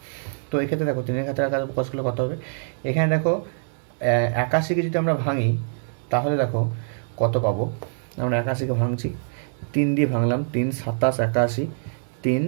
তো এক্ষেত্রে দেখো 3-এর ঘাতের আকারে প্রকাশ করলে কত হবে, এখানে দেখো 81কে যদি আমরা ভাঙি তাহলে দেখো কত পাবো, আমরা 81কে ভাঙছি, 3 দিয়ে ভাঙলাম, 3 27 81, 3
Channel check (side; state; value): left; silent; digital silence